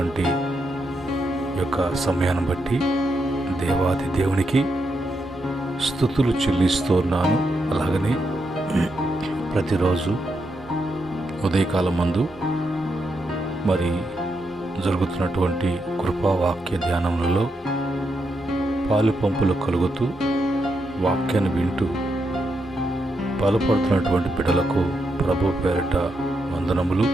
యొక్క సమయాన్ని బట్టి దేవాది దేవునికి స్తుతులు చెల్లిస్తున్నాను. అలాగనే ప్రతిరోజు ఉదయకాలం మందు మరి జరుగుతున్నటువంటి కృపావాక్య ధ్యానములలో పాలు పంపులు కలుగుతూ వాక్యాన్ని వింటూ బలపడుతున్నటువంటి బిడ్డలకు ప్రభు పేరిట వందనములు,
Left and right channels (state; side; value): normal; both; correlation 0.82